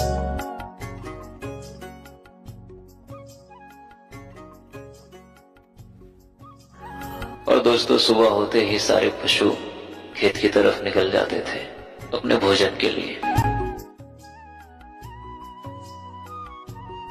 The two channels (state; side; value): identical; both; correlation 1.00